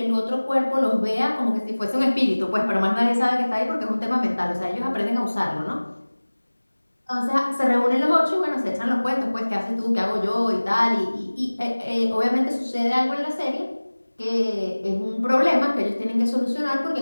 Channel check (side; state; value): both; inverted; correlation -1.00